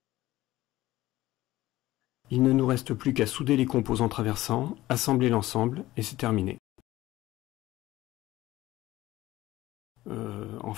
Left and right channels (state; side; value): quieter; right; 16.4 dB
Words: Il ne nous reste plus qu'à souder les composants traversants, assembler l'ensemble et c'est terminé. En